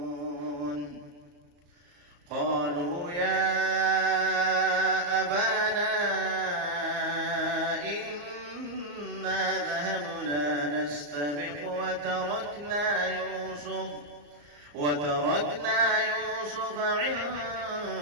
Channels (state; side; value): late; left; 34 ms